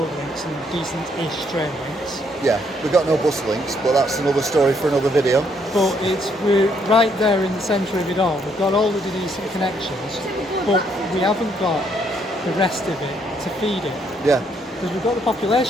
links and decent-ish train links. Yeah, we've got no bus links, but that's another story for another video. But we're right there in the centre of it all. We've got all of the decent connections, but we haven't got the rest of it to feed it. Yeah. Because we've got the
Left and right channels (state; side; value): normal; both; correlation 0.71